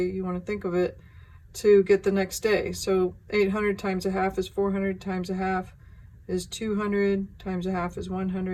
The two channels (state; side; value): identical; both; correlation 1.00